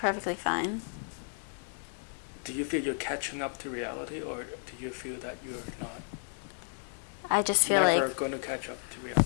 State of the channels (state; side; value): silent; right; digital silence